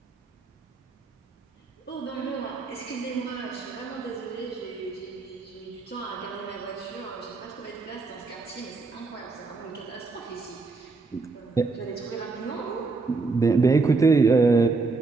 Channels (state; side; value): quieter; left; 4.0 dB